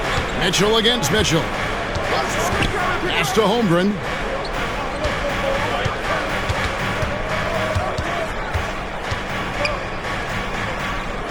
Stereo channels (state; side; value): identical; both; correlation 1.00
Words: Mitchell against Mitchell. Pass to Holmgren.